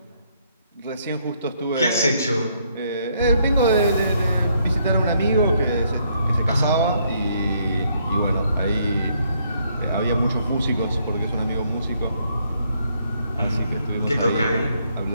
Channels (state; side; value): inverted; both; correlation -0.71